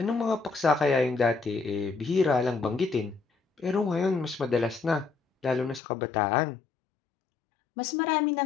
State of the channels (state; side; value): drops out; right; at 5.8 s